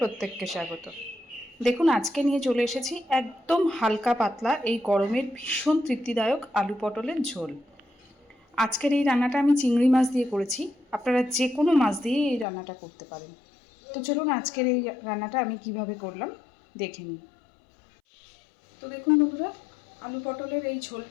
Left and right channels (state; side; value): drops out; right; at 12.5 s